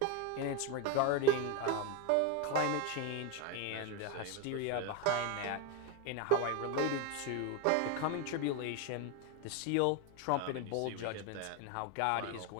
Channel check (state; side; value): different; both; correlation 0.02